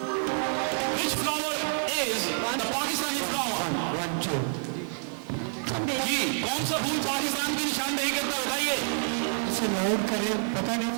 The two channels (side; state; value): left; silent; digital silence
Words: which flower is the Pakistani flower? जी, कौन सा फूल पाकिस्तान की निशानदेही करता है बताइए। इसे लाउड करें, पता नहीं